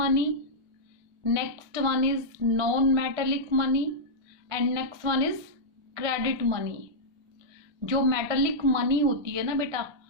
next one is non metallic money and next one is credit money. जो मेटेलिक मनी होती है ना बेटा,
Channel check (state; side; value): late; left; 1.6 ms